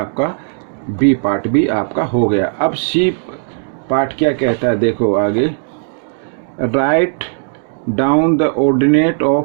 बी पार्ट भी आपका हो गया। अब सी पार्ट क्या कहता है, देखो आगे, right down the ordinate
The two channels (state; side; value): silent; left; digital silence